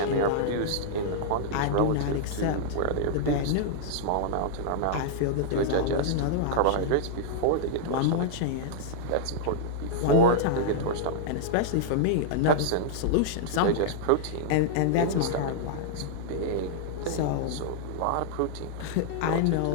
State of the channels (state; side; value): different; both; correlation -0.01